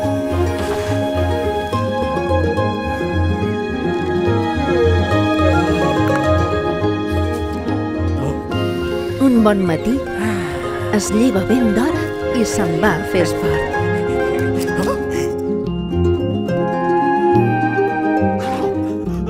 Un bon matí, es lleva ben d'hora i se'n va a fer esport.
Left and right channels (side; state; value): both; identical; correlation 1.00